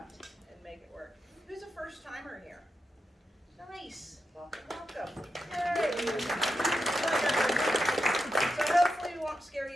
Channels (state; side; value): normal; both; correlation 0.87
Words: and make it work. Who's a first timer here? Nice. Welcome. Yay. So hopefully we won't scare